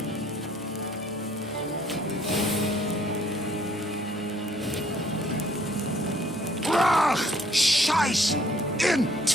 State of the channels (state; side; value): normal; both; correlation 0.62